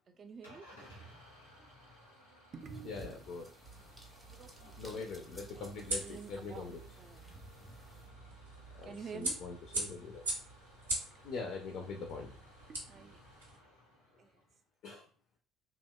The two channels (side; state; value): both; normal; correlation 0.43